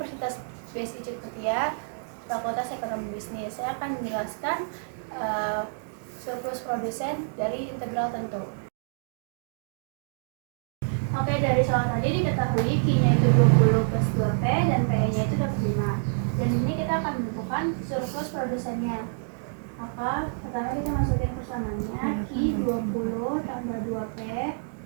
BSI Cipetya, Fakultas Ekonomi Bisnis. Saya akan menjelaskan surplus produsen dari integral tentu. Oke, dari soal tadi diketahui Q-nya itu 20 plus 2P dan PE-nya itu dapat 5. Dan ini kita akan menentukan surplus produsennya. Maka pertama kita masukin persamaannya, Q 20 tambah 2P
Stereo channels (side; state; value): left; silent; digital silence